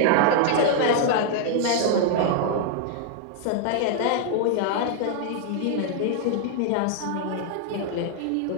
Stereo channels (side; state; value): both; different; correlation 0.00